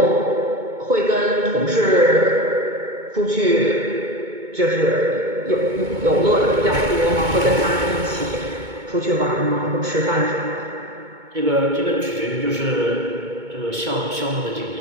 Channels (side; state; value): left; late; 2.2 ms